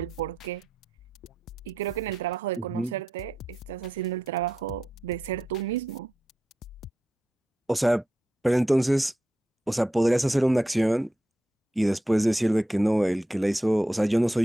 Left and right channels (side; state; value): both; normal; correlation 0.87